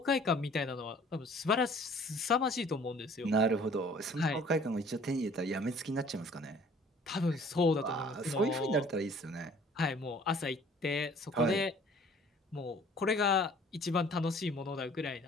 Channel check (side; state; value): both; normal; correlation 0.53